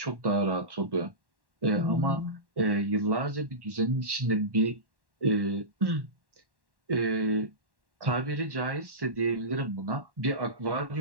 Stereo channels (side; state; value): left; late; 1.1 ms